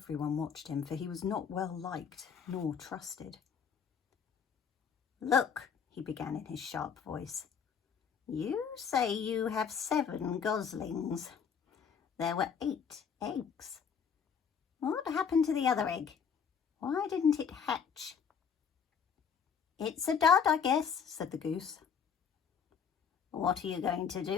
watched him, for he was not well liked nor trusted. "Look," he began in his sharp voice. You say you have 7 goslings. There were 8 eggs. What happened to the other egg? Why didn't it hatch? It's a dud, I guess, said the goose. What are you going to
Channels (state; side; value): quieter; right; 6.9 dB